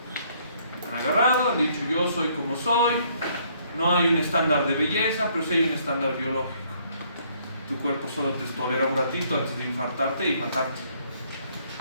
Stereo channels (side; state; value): both; inverted; correlation -0.66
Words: Han agarrado, han dicho yo soy como soy. No hay un estándar de belleza, pero sí hay un estándar biológico. Tu cuerpo solo te tolera un ratito antes de infartarte y matarte.